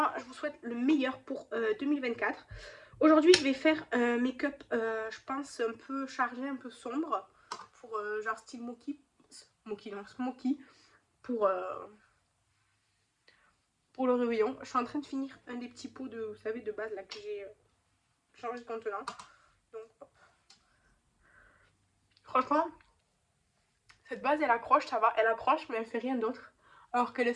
je vous souhaite le meilleur pour 2024. Aujourd'hui, je vais faire un make-up, je pense, un peu chargé, un peu sombre, pour genre style smoky, pour le réveillon. Je suis en train de finir un des petits pots de, vous savez, de base là que j'ai changé de contenant. Donc, hop. Franchement, cette base, elle accroche, ça va, elle accroche, mais elle fait rien d'autre. Alors qu'elle est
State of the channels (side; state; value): both; identical; correlation 1.00